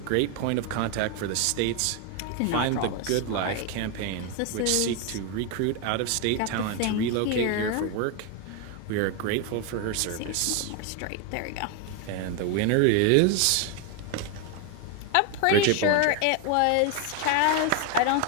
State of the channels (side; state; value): both; different; correlation 0.01